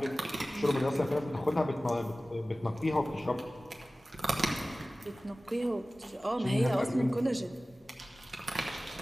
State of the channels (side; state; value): both; normal; correlation 0.97